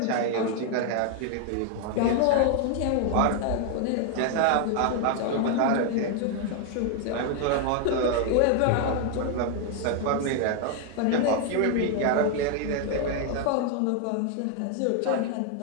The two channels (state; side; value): different; both; correlation 0.00